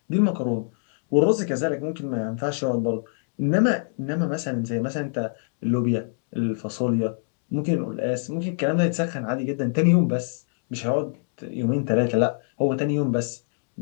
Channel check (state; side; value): silent; right; digital silence